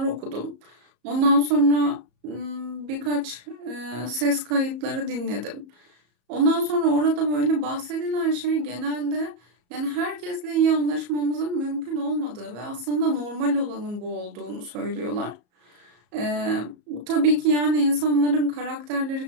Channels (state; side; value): late; left; 34 ms